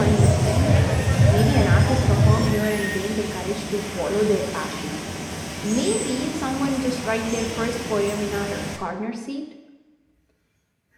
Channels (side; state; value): both; identical; correlation 1.00